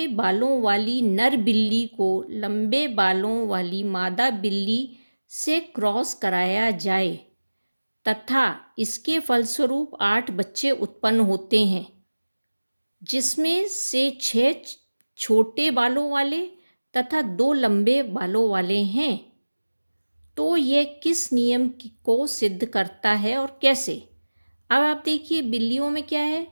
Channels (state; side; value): inverted; both; correlation -1.00